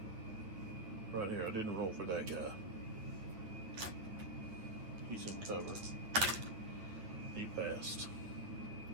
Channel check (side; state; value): left; late; 9.4 ms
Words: Right here, I didn't roll for that guy. He's in cover. He passed.